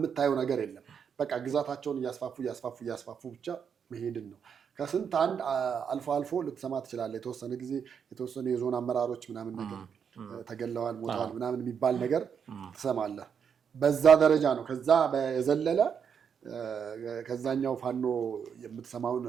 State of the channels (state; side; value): quieter; left; 7.2 dB